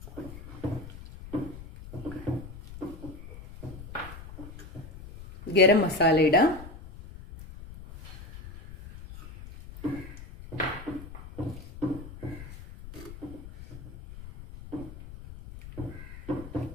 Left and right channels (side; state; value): left; noise; rumble, 14 dB below the sound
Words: ഗരം മസാല ഇടാം.